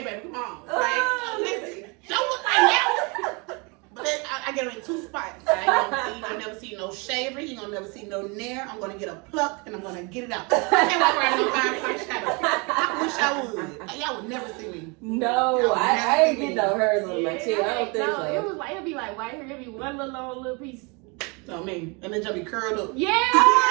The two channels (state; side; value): quieter; left; 30.3 dB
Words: baby, come on. Like, listen, don't look like that. But then I get them in 2 spots. You ain't gonna never see no shaver. You ain't gonna never see no nair. I'm gonna get a pluck and I'm gonna get it out. I can't walk around no 5-point shadow. I wish I would. Y'all would never see me. No, I ain't get no hairs on my chin. I don't think so. It was like, it'd be like right here. It'd be one little long little piece. I mean, and then just be curled up. Yeah.